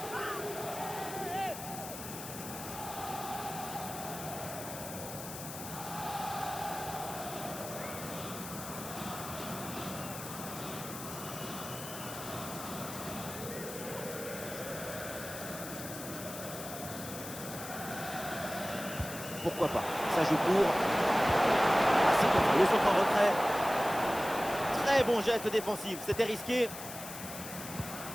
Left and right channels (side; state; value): left; noise; hiss, 10 dB below the sound